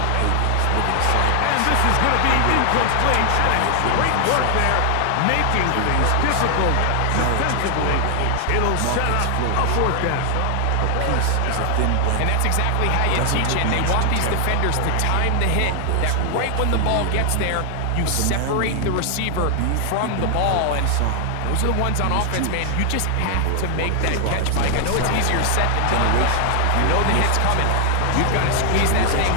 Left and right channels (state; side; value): different; both; correlation 0.00